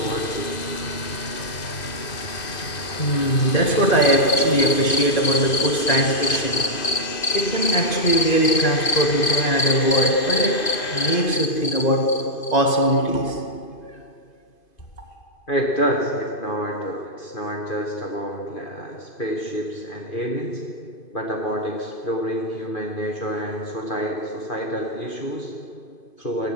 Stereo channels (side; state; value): right; late; 2.5 ms